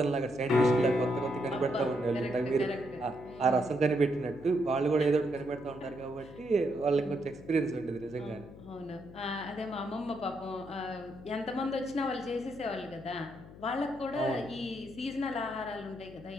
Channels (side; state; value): left; noise; hum, 17 dB below the sound